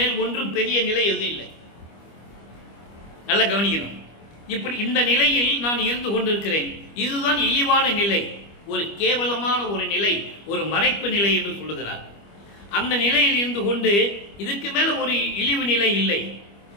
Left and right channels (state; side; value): late; right; 25 ms